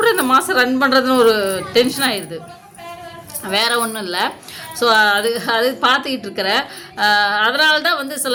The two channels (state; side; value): identical; both; correlation 1.00